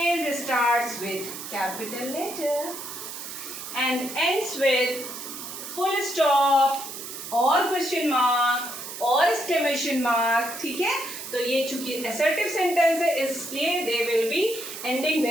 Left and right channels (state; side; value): noise; right; hiss, 9 dB below the sound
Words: starts with capital letter and ends with full stop और क्वेश्चन मार्क और एक्सक्लेमेशन मार्क। ठीक है, तो ये चूंकि असर्टिव सेंटेंस है इसलिए they will be ending